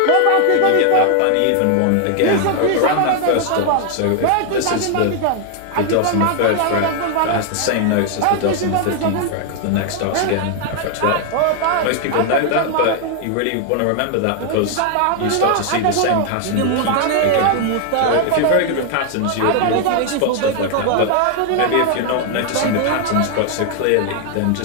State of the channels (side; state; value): both; different; correlation 0.00